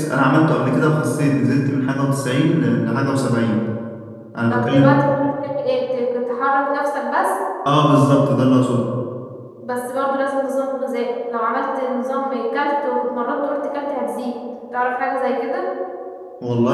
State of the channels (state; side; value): identical; both; correlation 1.00